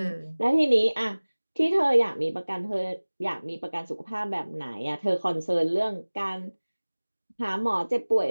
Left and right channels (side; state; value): both; inverted; correlation -1.00